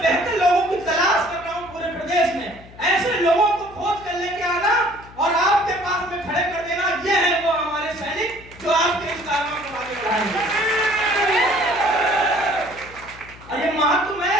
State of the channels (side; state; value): left; noise; hum, 20 dB below the sound